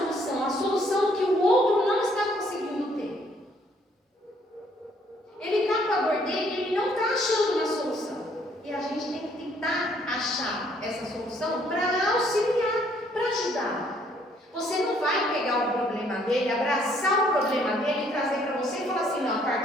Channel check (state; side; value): normal; both; correlation 0.65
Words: A solução que o outro não está conseguindo ter. Ele está com a dor dele e ele não está achando uma solução. E a gente tem que tentar achar essa solução para auxiliar, para ajudar. Você não vai pegar o problema dele, abraçar o problema dele e trazer para você